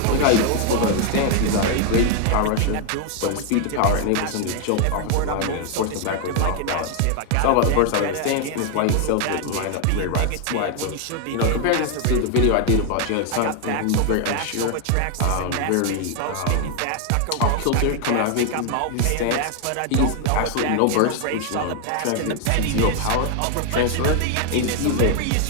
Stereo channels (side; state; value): both; different; correlation 0.00